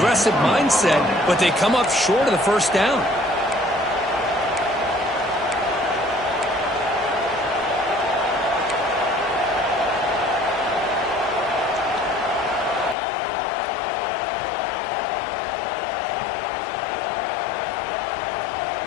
mindset, but they come up short of the 1st down.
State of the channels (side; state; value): right; drops out; at 13.0 s